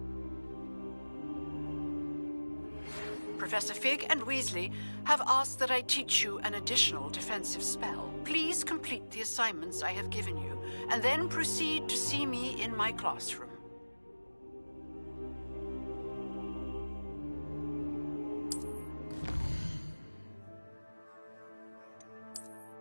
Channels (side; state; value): both; inverted; correlation -1.00